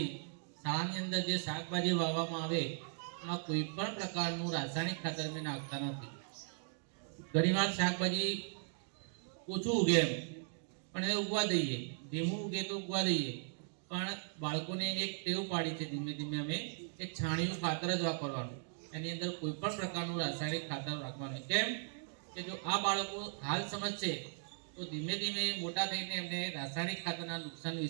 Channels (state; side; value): silent; left; digital silence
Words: શાળાની અંદર જે શાકભાજી વાવવામાં આવે એમાં કોઈ પણ પ્રકારનું રાસાયણિક ખાતર અમે નાખતા નથી. ઘણીવાર શાકભાજી ઓછું ઉગે એમ પણ એ ઉગવા દઈએ, ધીમું ઉગે તો ઉગવા દઈએ, પણ બાળકોને એક ટેવ પાડી છે ધીમે ધીમે અમે એક છાણિયું ખાતર જ વાપરવાનું, એની અંદર કોઈ પણ પ્રકારનું રાસાયણિક ખાતર રાખવાનું. કેમ કે જો આ બાળકો હાલ સમજશે તો ધીમે ધીમે મોટા થઈને એમને રાસાયણિક ખાતરના નુકસાન